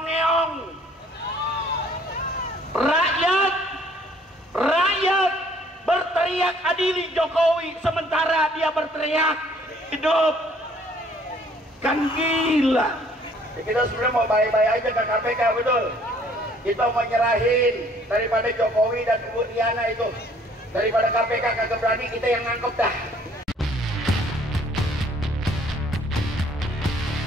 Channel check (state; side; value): normal; both; correlation 0.59